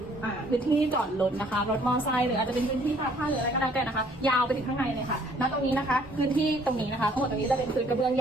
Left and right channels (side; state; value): both; normal; correlation 0.60